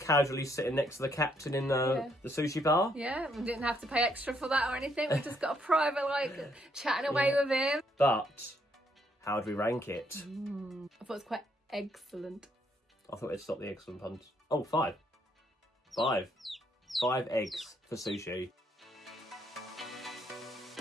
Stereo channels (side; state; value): both; normal; correlation 0.72